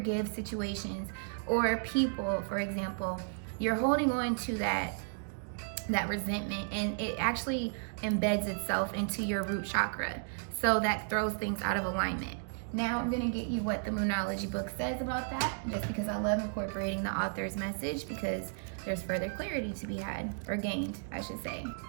situations or people, for example, you're holding on to that resentment, and it actually embeds itself into your root chakra. So that throws things out of alignment. Now I'm going to get you what the Moonology book says about that, just because I love incorporating the author's message, because there's further clarity to be had, or gained, I should say.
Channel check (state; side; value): silent; left; digital silence